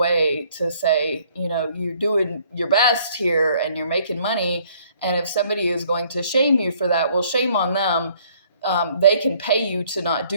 to say, you're doing your best here and you're making money. And if somebody is going to shame you for that, well, shame on them. They can pay you to not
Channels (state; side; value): inverted; both; correlation -0.61